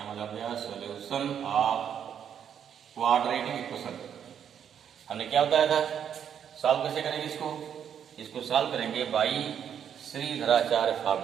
मतलब गया, सोल्यूशन ऑफ क्वाड्रेटिक इक्वेशन। हमने क्या बताया था, सॉल्व कैसे करेंगे इसको सॉल्व करेंगे बाई श्रीधराचार्य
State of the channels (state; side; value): quieter; left; 8.6 dB